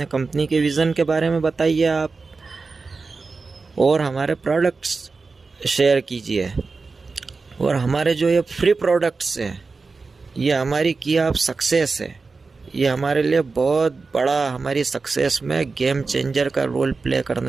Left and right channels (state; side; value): quieter; left; 4.2 dB